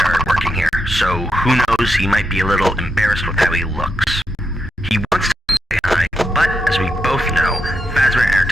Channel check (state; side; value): normal; both; correlation 0.84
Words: working here, so who knows, he might be a little embarrassed with how he looks. He wants to say hi, but as we both know, Fazbear